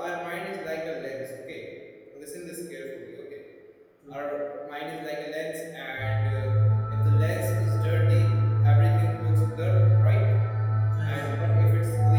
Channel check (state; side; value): identical; both; correlation 1.00